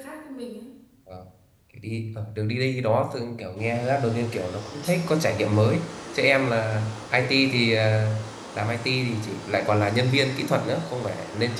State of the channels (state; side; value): identical; both; correlation 1.00